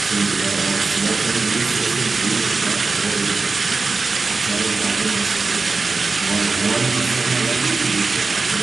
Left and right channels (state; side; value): quieter; left; 4.1 dB